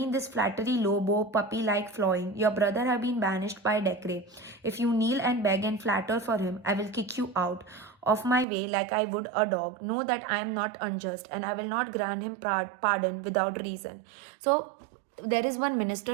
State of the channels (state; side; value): drops out; left; at 8.5 s